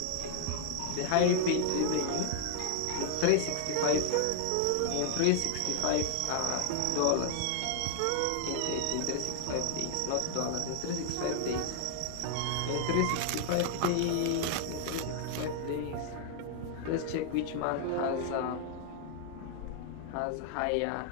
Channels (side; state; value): both; different; correlation 0.00